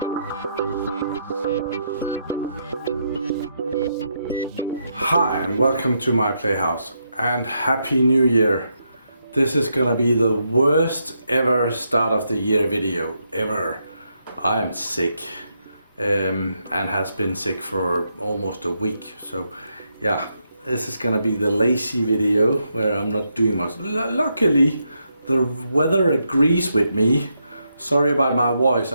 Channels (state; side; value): inverted; both; correlation -0.80